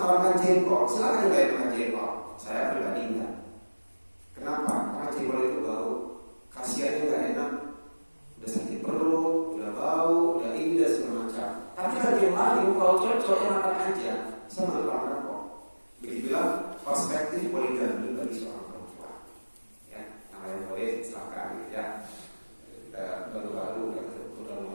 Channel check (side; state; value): both; inverted; correlation -1.00